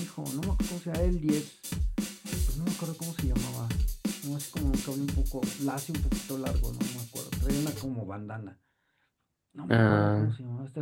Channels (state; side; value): identical; both; correlation 1.00